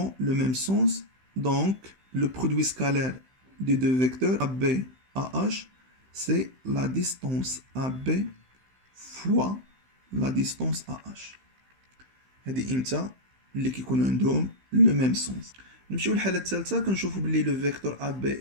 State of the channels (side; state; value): left; late; 15 ms